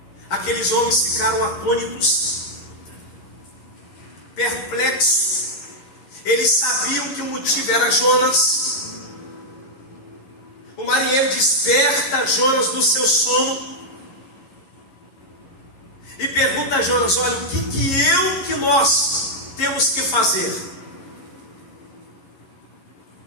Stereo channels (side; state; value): right; late; 11 ms